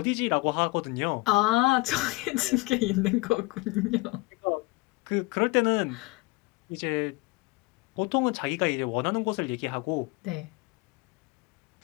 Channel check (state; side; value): quieter; right; 23.9 dB